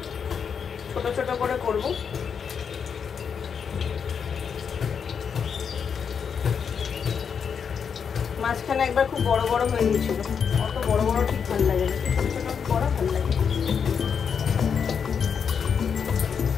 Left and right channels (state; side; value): quieter; right; 6.8 dB